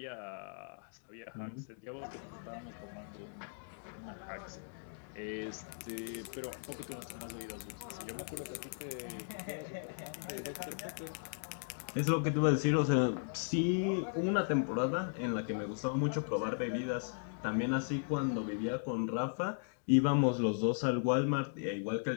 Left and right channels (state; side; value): silent; right; digital silence